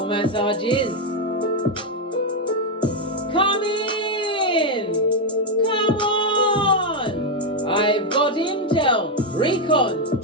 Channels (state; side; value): normal; both; correlation 0.03